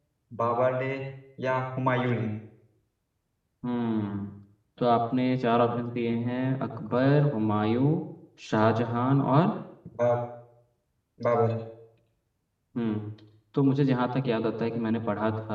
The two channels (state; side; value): identical; both; correlation 1.00